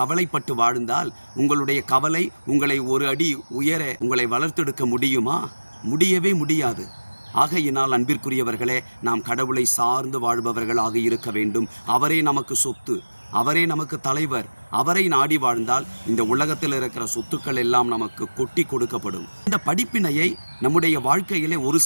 வாழ்ந்தால் உங்களுடைய கவலை உங்களை ஒரு அடி உயர உங்களை வளர்த்தெடுக்க முடியுமா? முடியவே முடியாது. ஆகையினால் அன்பிற்குரியவர்களே, நாம் கடவுளை சார்ந்து வாழ்பவர்களாக இருக்க வேண்டும். அவரே நமக்கு சொத்து, அவரே நமக்கு தலைவர். அவரை நாடி வாழ்ந்தால் இந்த உலகத்தில் இருக்கிற சொத்துக்கள் எல்லாம் நமக்கு கொட்டி கொடுக்கப்படும். இந்த படிப்பினையை நம்முடைய வாழ்க்கையிலே ஒரு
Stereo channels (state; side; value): inverted; both; correlation -1.00